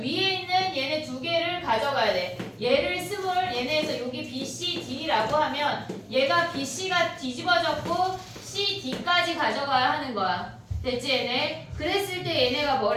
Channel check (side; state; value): both; identical; correlation 1.00